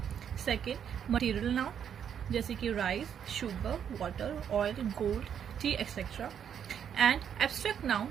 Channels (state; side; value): quieter; left; 8.5 dB